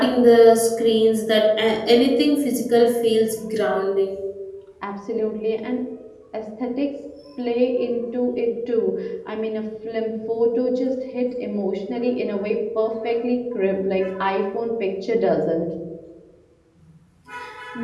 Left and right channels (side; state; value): both; identical; correlation 1.00